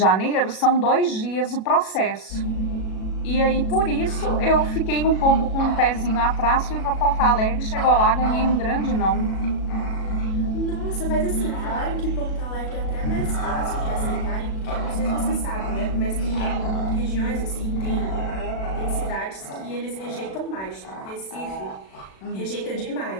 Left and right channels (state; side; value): late; right; 37 ms